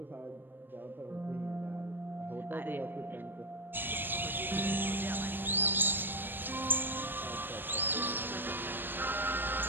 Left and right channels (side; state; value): left; late; 0.095 ms